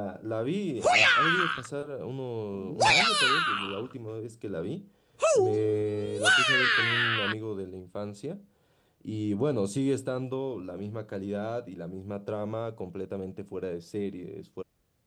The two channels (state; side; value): identical; both; correlation 1.00